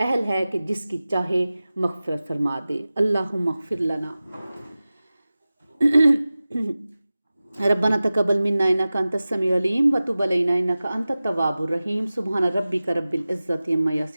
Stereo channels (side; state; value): both; inverted; correlation -0.97